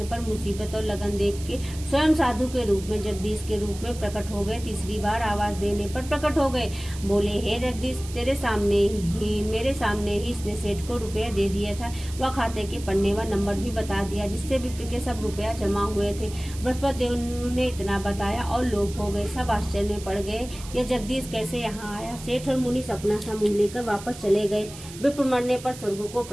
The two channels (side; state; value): right; noise; hiss, 15 dB below the sound